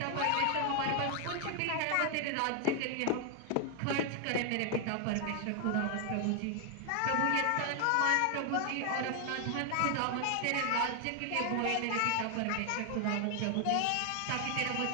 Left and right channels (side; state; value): both; different; correlation 0.00